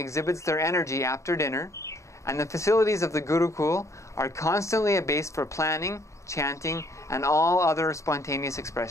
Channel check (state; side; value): late; right; 0.14 ms